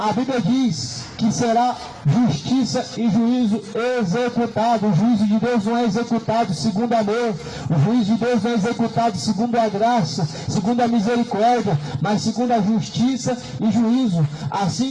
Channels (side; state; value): both; identical; correlation 1.00